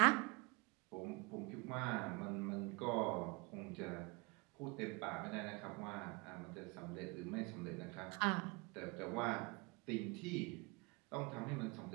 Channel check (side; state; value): left; quieter; 28.5 dB